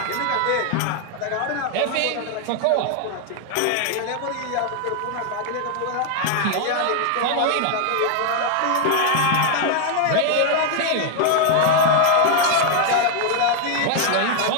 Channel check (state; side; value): different; both; correlation 0.00